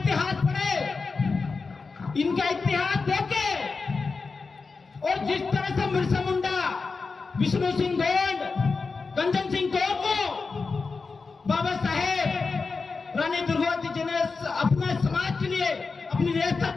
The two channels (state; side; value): quieter; right; 4.4 dB